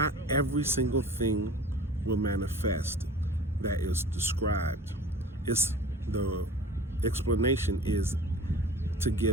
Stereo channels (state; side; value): normal; both; correlation 0.42